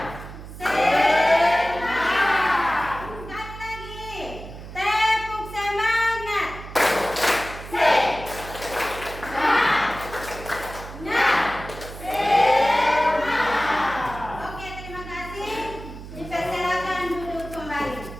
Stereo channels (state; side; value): noise; right; hum, 13 dB below the sound